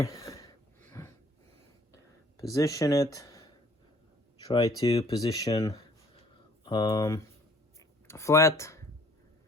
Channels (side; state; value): both; normal; correlation 0.57